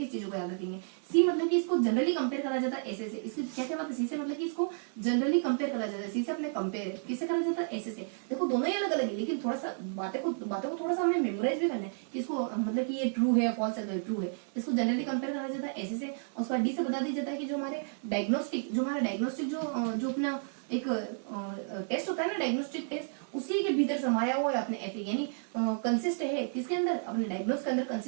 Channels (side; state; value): left; silent; 57 dB below the other